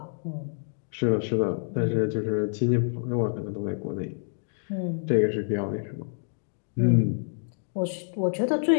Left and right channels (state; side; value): silent; right; digital silence